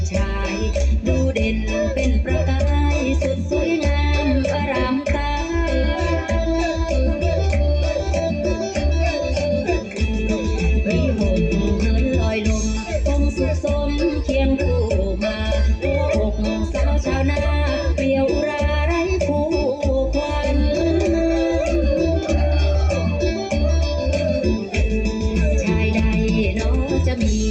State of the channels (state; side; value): identical; both; correlation 1.00